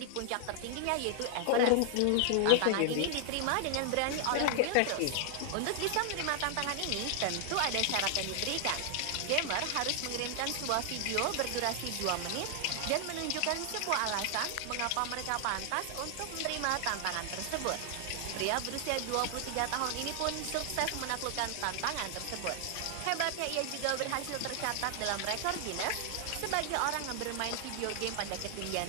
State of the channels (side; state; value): both; different; correlation 0.00